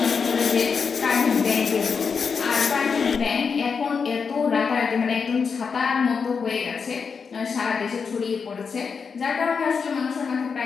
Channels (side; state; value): right; quieter; 5.7 dB